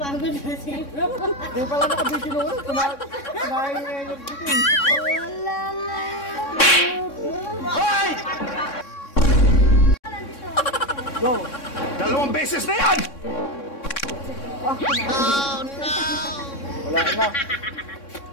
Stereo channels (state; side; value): late; right; 3.6 ms